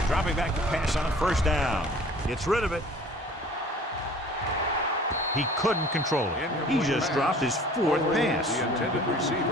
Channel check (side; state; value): both; normal; correlation 0.48